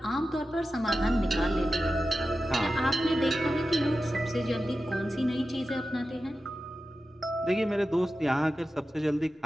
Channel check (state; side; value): normal; both; correlation 0.93